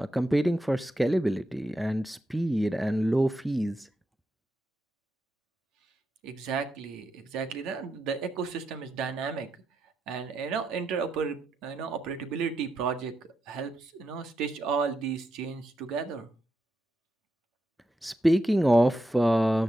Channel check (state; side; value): normal; both; correlation 0.85